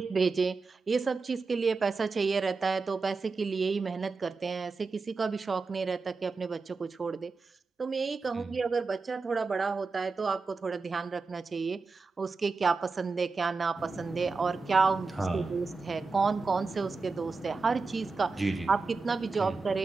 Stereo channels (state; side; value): quieter; left; 4.2 dB